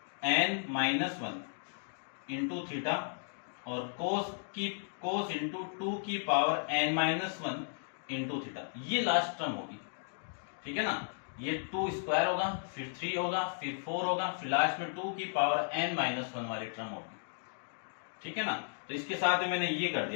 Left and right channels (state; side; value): silent; right; digital silence